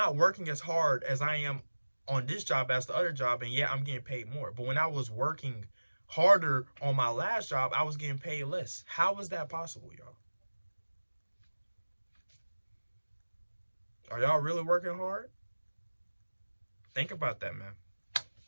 working as hard as I am on this job as the other job, and yeah, I'm getting paid more. But when I was working harder on my last job, I was getting paid less. How is that possible, y'all? Are y'all really working hard? Think about that, man.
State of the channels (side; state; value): both; inverted; correlation -1.00